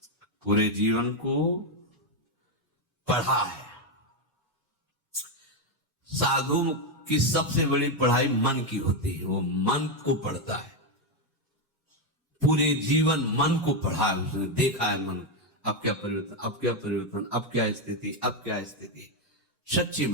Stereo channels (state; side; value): normal; both; correlation 0.05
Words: पूरे जीवन को पढ़ा है। साधु की सबसे बड़ी पढ़ाई मन की होती है, वो मन को पढ़ता है। पूरे जीवन मन को पढ़ा है उसने, देखा है मन अब क्या परिवर्तन, अब क्या परिवर्तन, अब क्या स्थिति, अब क्या स्थिति। सच्ची